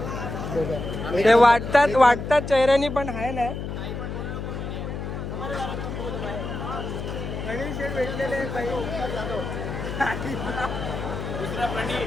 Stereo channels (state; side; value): noise; left; hum, 6 dB below the sound